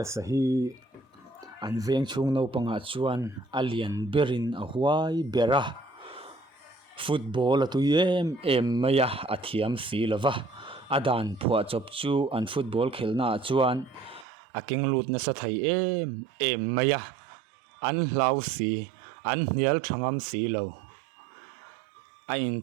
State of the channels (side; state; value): left; drops out; at 14.2 s